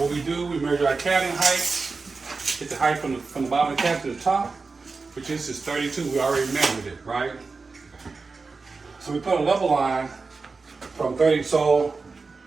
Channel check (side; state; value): left; quieter; 4.2 dB